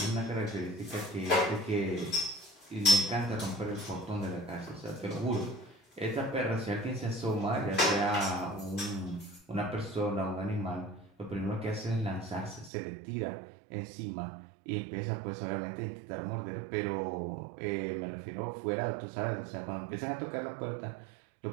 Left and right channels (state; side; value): drops out; left; at 12.7 s